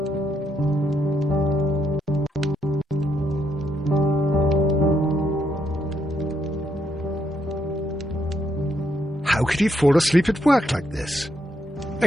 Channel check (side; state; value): both; normal; correlation 0.77